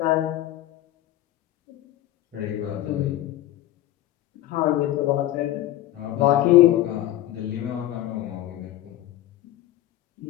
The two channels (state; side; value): quieter; right; 14.2 dB